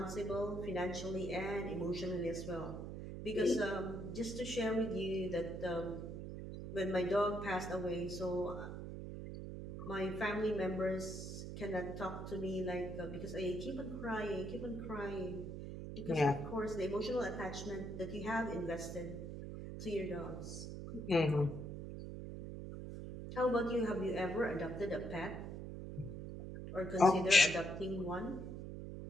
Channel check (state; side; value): noise; right; hum, 7 dB below the sound